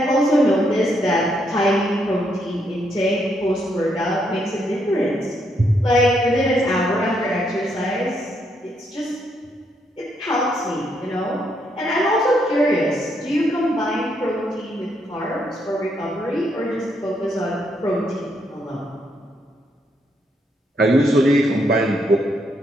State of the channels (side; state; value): both; normal; correlation 0.75